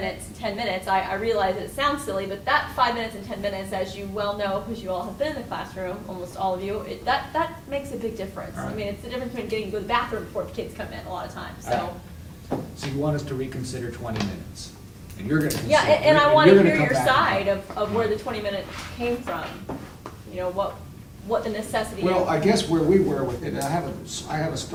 10 minutes. I realize that it sounds silly, but that 5 minutes and 10 minutes, as you well know, because you all have been in the classroom, almost all of you, that makes a big difference. All right. I mean, it's the difference between getting to go to the bathroom before the kids come in a lot of times, so. So you want us to reconsider 20 minutes? And you're gonna Yeah, consider- and I you're want to gonna hear come your back. side of where the 20 minutes came from. What the necessity is. Well, I guess where we were with it, I have a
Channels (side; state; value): both; identical; correlation 1.00